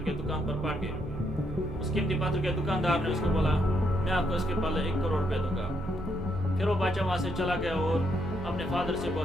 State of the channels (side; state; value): right; noise; hum, 17 dB below the sound